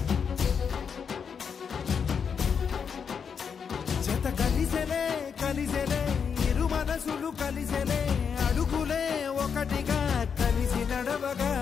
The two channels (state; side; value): quieter; right; 6.6 dB